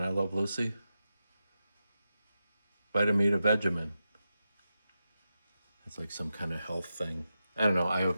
Love Lucy? Vitamita Vegemin. It's like some kind of health thing. I don't know.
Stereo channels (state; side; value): inverted; both; correlation -0.90